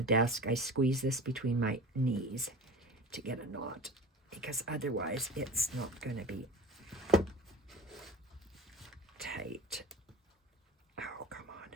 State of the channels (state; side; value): normal; both; correlation 0.36